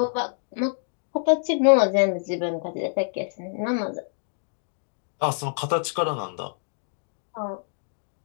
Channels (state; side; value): silent; right; digital silence